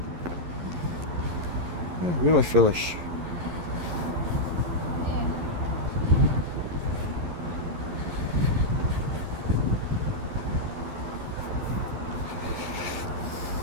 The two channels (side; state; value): left; late; 11 ms